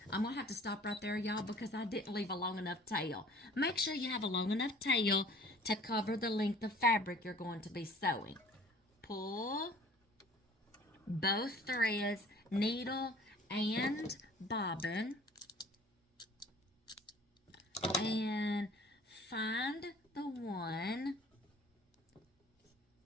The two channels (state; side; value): normal; both; correlation 0.50